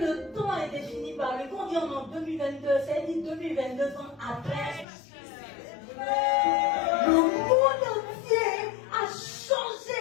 temps est défini par lui. Quand on dit en 2022, ça dit 2022 ans après. Le monde entier a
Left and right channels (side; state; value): right; drops out; at 4.9 s